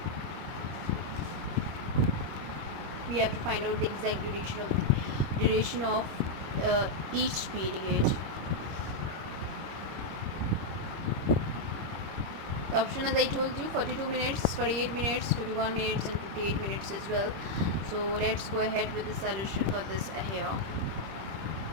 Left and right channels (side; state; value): left; late; 26 ms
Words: We have to find out the exact duration of each period. The option, as I told you, 42 minutes, 48 minutes, 51 minutes and 58 minutes as well. So let's go ahead with the solution for this here.